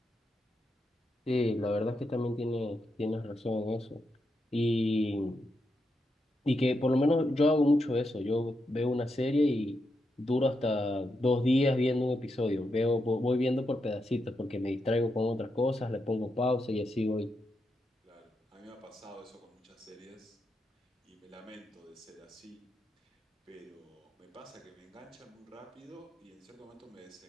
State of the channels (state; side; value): normal; both; correlation 0.84